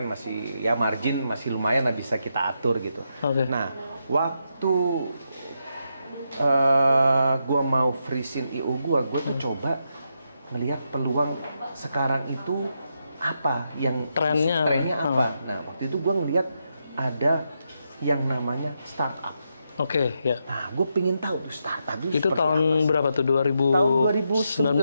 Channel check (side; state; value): both; inverted; correlation -0.83